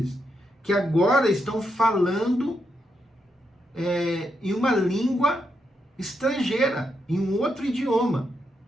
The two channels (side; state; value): both; normal; correlation 0.82